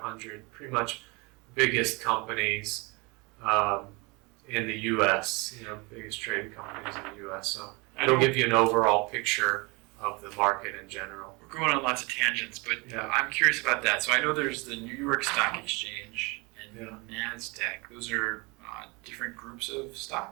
pretty much biggest companies in the U.S., biggest trading companies in the U.S. So it'll give you an overall picture of the market in general. We're going on lots of tangents, but Yeah. I'm curious about that. So I know there's the New York Stock Exchange and Yeah. NASDAQ. Those are different groups of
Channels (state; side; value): quieter; left; 27.6 dB